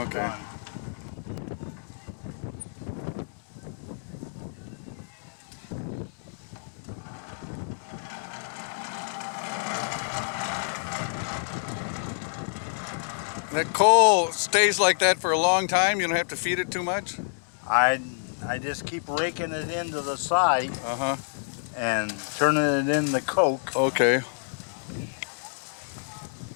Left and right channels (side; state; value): right; silent; digital silence